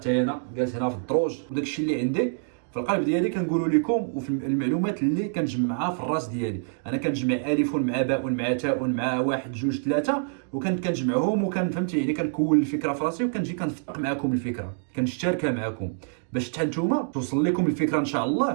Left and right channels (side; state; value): left; silent; digital silence